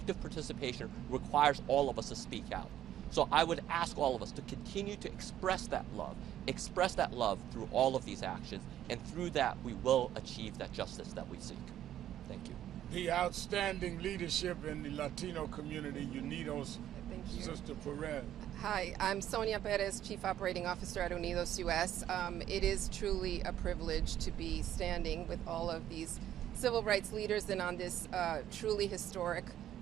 participation requires all of us to speak out. So I would ask all of us to continue to express that love through all of these actions, and through that we will achieve that justice that we seek. Thank you. The outstanding leadership in the Latino community, Unidos, Thank you. Sister Perez. Hi, I'm Sonia Perez, Chief Operating Officer at Unidos US. It is truly a privilege to be standing with all of these civil rights leaders and on this truly historic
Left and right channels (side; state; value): left; quieter; 11.6 dB